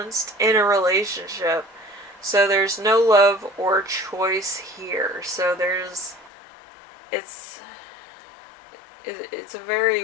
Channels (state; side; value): drops out; right; at 6.3 s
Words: in a relationship. So there's no love or choice here. So it's a